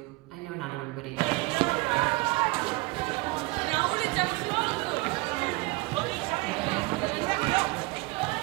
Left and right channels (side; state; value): left; quieter; 24.3 dB